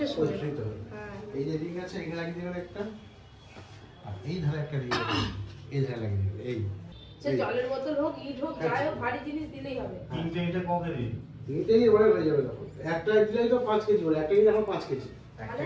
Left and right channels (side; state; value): both; identical; correlation 1.00